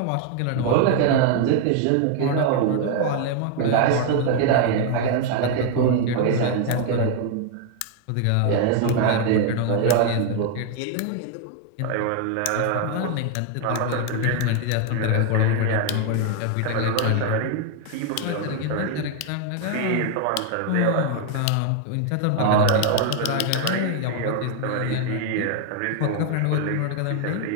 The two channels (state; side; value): different; both; correlation 0.00